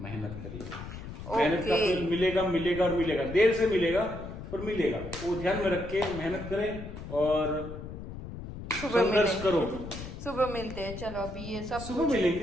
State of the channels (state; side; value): noise; left; rumble, 10 dB below the sound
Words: करिए। मेहनत का फल मिलेगा और मिलेगा, देर से मिलेगा पर मिलेगा, वो ध्यान में रख के मेहनत करें और संघर्ष करो। सुबह मिलते हैं, चलो अभी ये सब सुबह